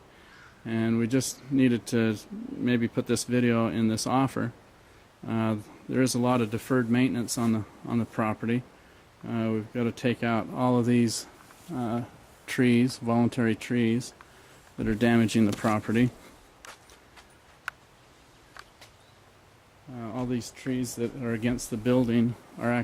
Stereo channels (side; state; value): both; identical; correlation 1.00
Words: and we just needed to maybe put this video in this offer. There is a lot of deferred maintenance on the property. We've got to take out all of these trees, voluntary trees, that are damaging the property. All these trees that are against the building are